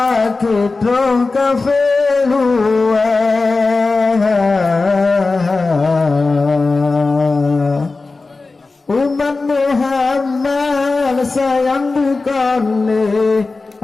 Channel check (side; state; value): right; quieter; 3.7 dB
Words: trong kafe luar umat Muhammad sayang bukanlah